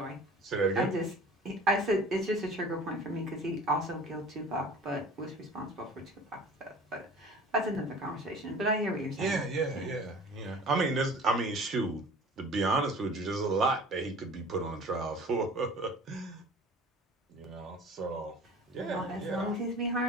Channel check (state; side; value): normal; both; correlation 0.44